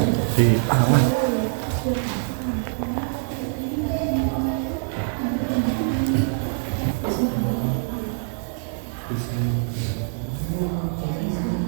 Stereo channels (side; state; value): left; silent; digital silence